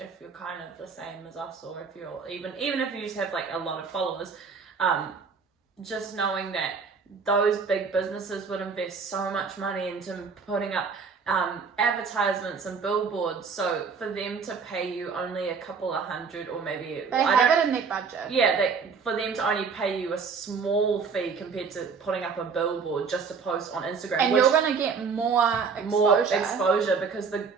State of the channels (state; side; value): quieter; left; 5.5 dB